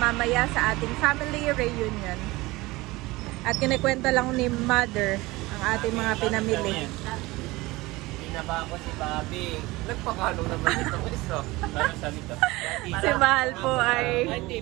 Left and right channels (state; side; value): quieter; left; 20.9 dB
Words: sa ating family reunion. At kinikwento lang ni Mother ang ating mga pinamili. Pinaba ko si Bobby. Nagpakalo naman itong isa. Para sa nito. Si Mahal po ay